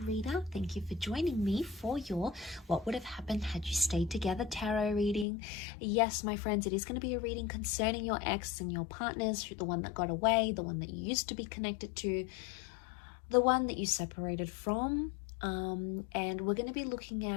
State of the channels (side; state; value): right; drops out; at 5.2 s